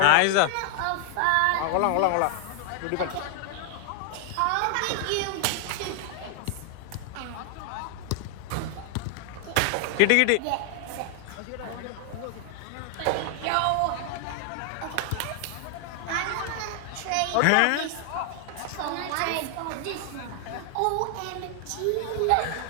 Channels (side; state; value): both; different; correlation 0.00